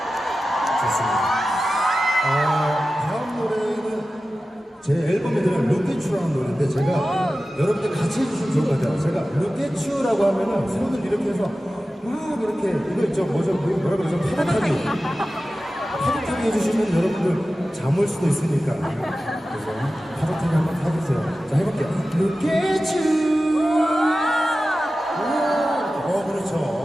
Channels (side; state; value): both; normal; correlation 0.94